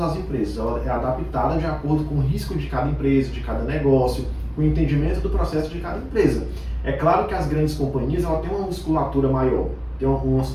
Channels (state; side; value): identical; both; correlation 1.00